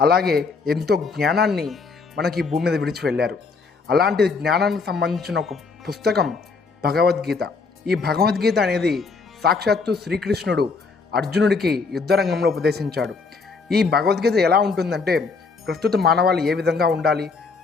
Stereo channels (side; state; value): right; quieter; 4.5 dB